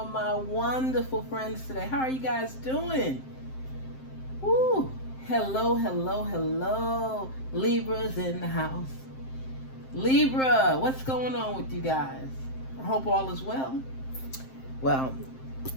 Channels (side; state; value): right; late; 7.6 ms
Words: my wonderful friends today? How are you guys doing? Woo! Hello, hello, hello. Libras in the house. Libra, what's going on with you guys? I hope all is well. Well,